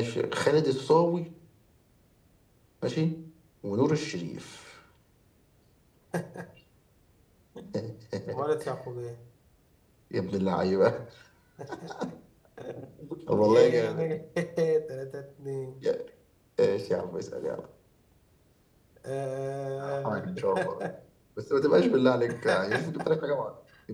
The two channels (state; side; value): identical; both; correlation 1.00